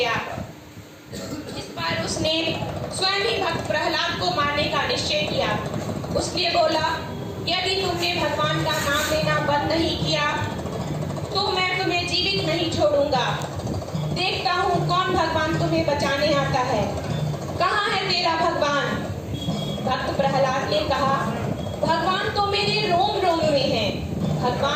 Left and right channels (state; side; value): identical; both; correlation 1.00